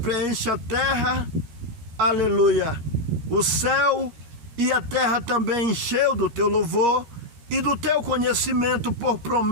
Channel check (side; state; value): left; late; 13 ms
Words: a terra, aleluia, o céu e a terra também encheu do teu louvor e do teu conhecimento por